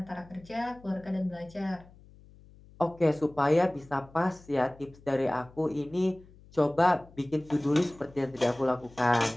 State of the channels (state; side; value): noise; left; hum, 24 dB below the sound